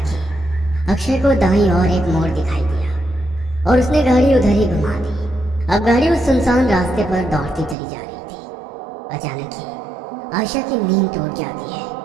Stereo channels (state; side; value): drops out; left; at 7.8 s